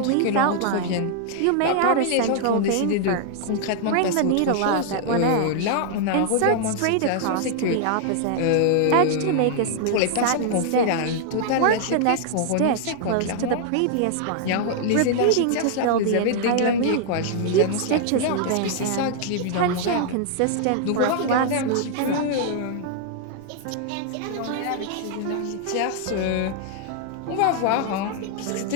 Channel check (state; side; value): different; both; correlation 0.00